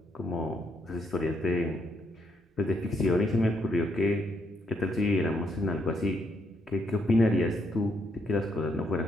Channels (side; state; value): both; normal; correlation 0.75